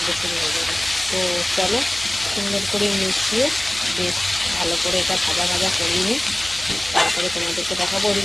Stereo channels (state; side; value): noise; right; hum, 18 dB below the sound